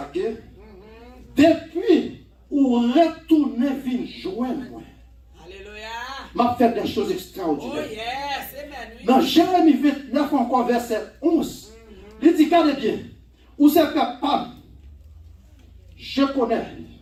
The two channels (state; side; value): identical; both; correlation 1.00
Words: que depuis où retourner vin joindre moi. Alléluia. M'a fait des choses Oh extraordinaires. yes. Amen. Oui. Dans Jérémie 29 encore verset 11, il dit regardez bien, où c'est capable, je connais.